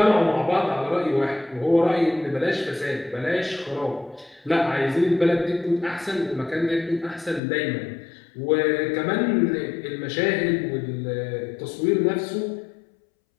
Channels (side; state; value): right; drops out; at 7.4 s